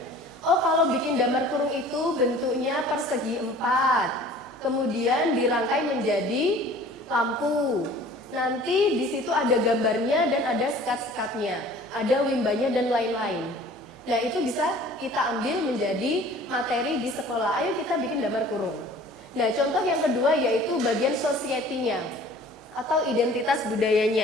Oh, kalau bikin damar kurung itu bentuknya persegi 4, kemudian dirangkai menjadi lampu. Nanti di situ ada gambarnya dan ada sekat-sekatnya, ada wimbanya dan lain-lain. Nah, itu bisa kita ambil menjadi materi di sekolah. Ayo kita bikin damar kurung. Nah, contoh yang kedua yaitu bagian society-nya atau identitas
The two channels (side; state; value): both; normal; correlation 0.48